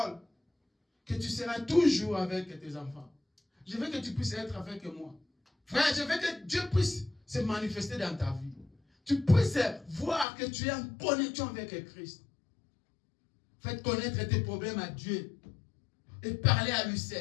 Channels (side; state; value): right; drops out; at 10.2 s